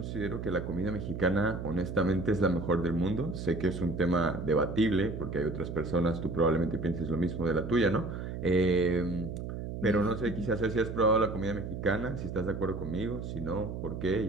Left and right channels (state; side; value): noise; right; hum, 6 dB below the sound